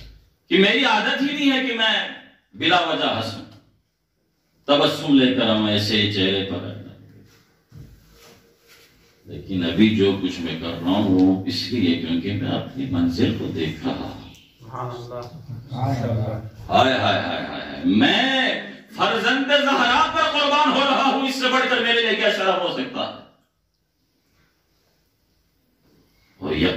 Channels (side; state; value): both; identical; correlation 1.00